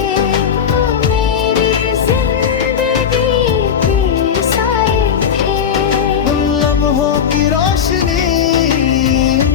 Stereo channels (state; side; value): quieter; right; 7.7 dB